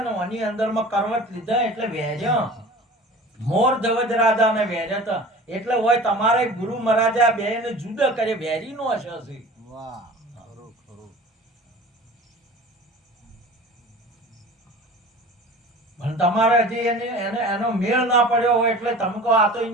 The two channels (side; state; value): both; normal; correlation 0.41